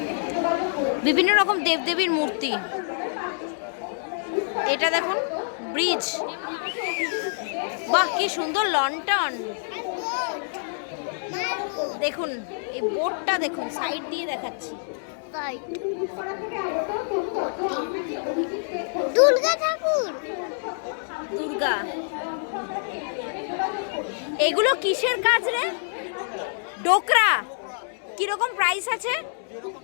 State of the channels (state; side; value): silent; right; digital silence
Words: বিভিন্ন রকম দেবদেবীর মূর্তি। এটা দেখুন ব্রিজ। বাহ, কি সুন্দর লন্ঠন। দেখুন এই বোর্ডটা দেখুন, সাইড দিয়ে দেখাচ্ছি। দুর্গা ঠাকুর, দুর্গা। এগুলো কিসের কাজ রে? ডোকরা। কিরকম প্রাইস আছে?